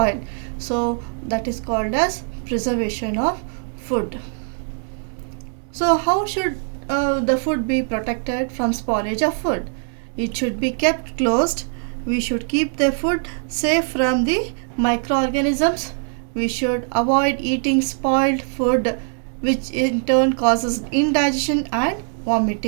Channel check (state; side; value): silent; left; 60 dB below the other